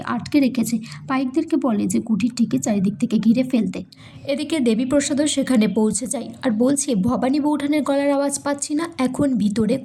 আটকে রেখেছে। পাইকদেরকে বলে যে কুঠিরটিকে চারিদিক থেকে ঘিরে ফেলতে। এদিকে দেবীপ্রসাদও সেখানে পৌঁছে যায় আর বলছে, ভবানী বৌঠানের গলার আওয়াজ পাচ্ছি না, এখন ভিতরে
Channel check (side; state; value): both; identical; correlation 1.00